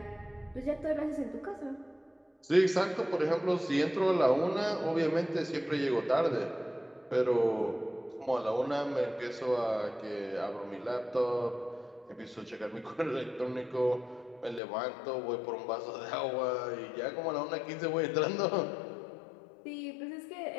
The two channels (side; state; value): right; drops out; at 14.6 s